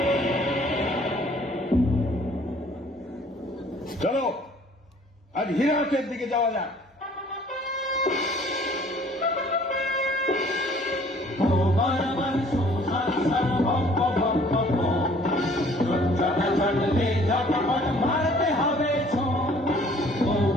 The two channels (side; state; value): both; normal; correlation 0.56